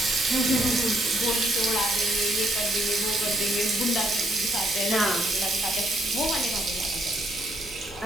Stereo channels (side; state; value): both; normal; correlation 0.71